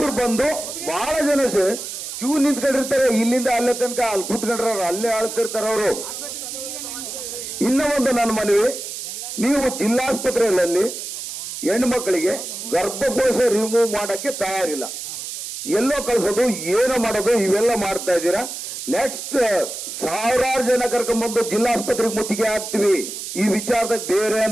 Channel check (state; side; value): noise; right; hiss, 8 dB below the sound